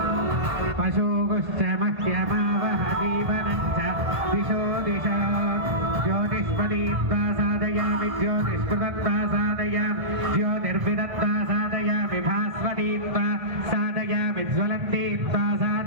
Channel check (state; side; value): late; left; 1.5 ms